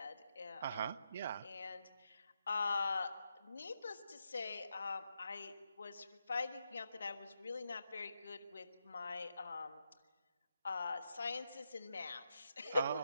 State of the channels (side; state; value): both; inverted; correlation -0.84